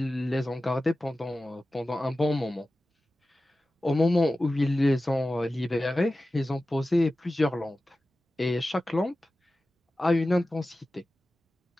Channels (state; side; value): normal; both; correlation 0.95